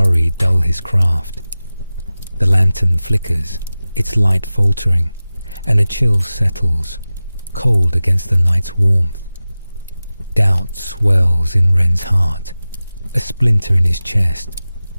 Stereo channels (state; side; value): inverted; both; correlation -0.96